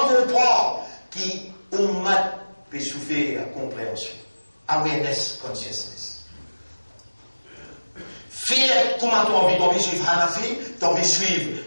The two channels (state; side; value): inverted; both; correlation -1.00